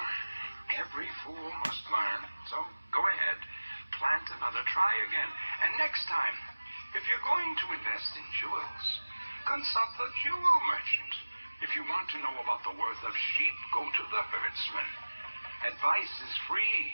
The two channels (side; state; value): both; inverted; correlation -1.00